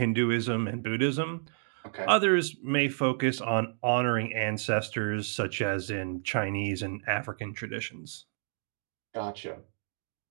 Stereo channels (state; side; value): silent; left; 58 dB below the other